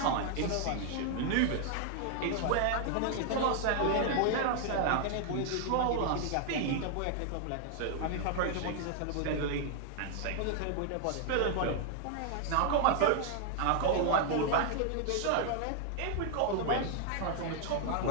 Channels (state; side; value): different; both; correlation 0.00